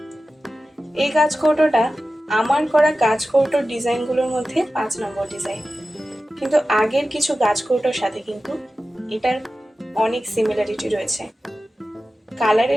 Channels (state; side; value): normal; both; correlation 0.94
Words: এই গাছ কৌটোটা আমার করা গাছ কৌটোর ডিজাইনগুলোর মধ্যে 5 নম্বর ডিজাইন, কিন্তু আগের কিছু গাছ কৌটোর সাথে কিন্তু এটার অনেক সিমিলারিটি রয়েছে।